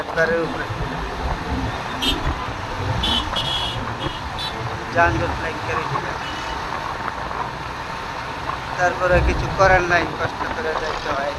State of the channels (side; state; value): both; identical; correlation 1.00